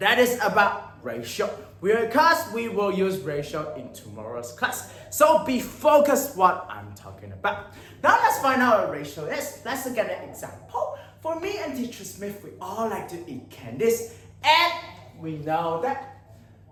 is about ratio. Because we will use ratio in tomorrow's class. So be focused what I'm talking about. Now let's find out what ratio is. Let's look at an example. For me and teacher Smith, we all like to eat candies. And we know that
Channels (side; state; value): both; identical; correlation 1.00